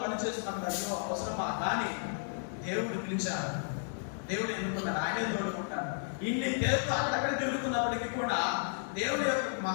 పనిచేస్తున్నప్పుడు అయ్యో అవసరమా, కానీ దేవుడు పిలిచారు, దేవుడు ఎన్నుకున్నాడు, ఆయనే తోడుకుంటాడు. ఇన్ని తేలుతో అక్కడక్కడ తిరుగుతున్నప్పటికీ కూడా దేవుడి యొక్క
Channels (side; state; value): right; silent; digital silence